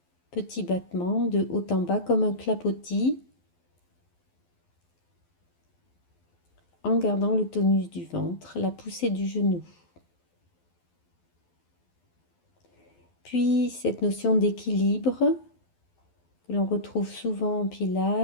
petit battement de haut en bas comme un clapotis, en gardant le tonus du ventre, la poussée du genou. Puis cette notion d'équilibre que l'on retrouve souvent en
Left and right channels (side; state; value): right; late; 12 ms